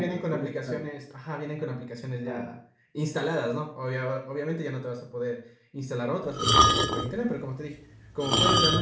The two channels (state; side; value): identical; both; correlation 1.00